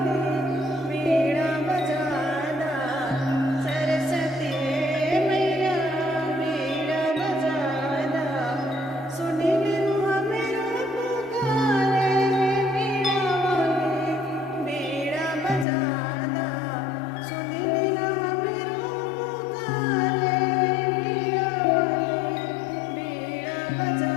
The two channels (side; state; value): right; drops out; at 15.7 s